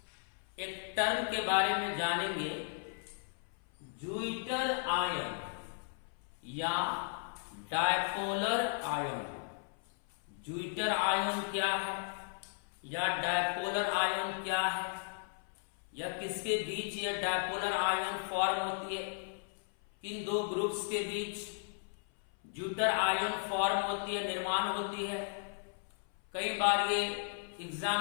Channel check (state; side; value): silent; right; 54 dB below the other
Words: एक टर्म के बारे में जानेंगे, ज्यूइटर आयन या डायपोलर आयन। ज्यूइटर आयन क्या है या डायपोलर आयन क्या है, या किसके बीच ये डायपोलर आयन फॉर्म होती है, किन दो ग्रुप्स के बीच ज्यूइटर आयन फॉर्म होती है, निर्माण होती है। कई बार ये